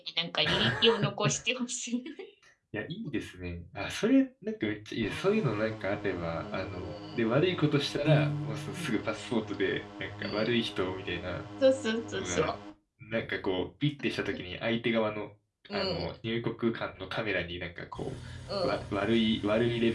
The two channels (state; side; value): identical; both; correlation 1.00